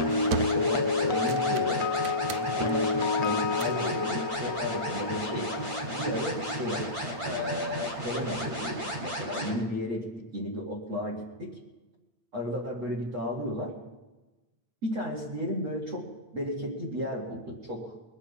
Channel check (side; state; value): left; late; 8.7 ms